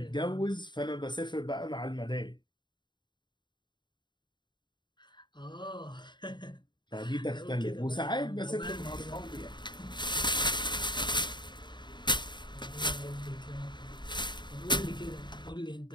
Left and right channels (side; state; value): right; late; 0.22 ms